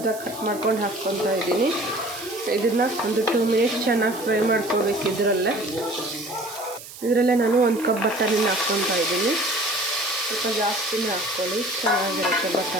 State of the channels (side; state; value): right; noise; hiss, 15 dB below the sound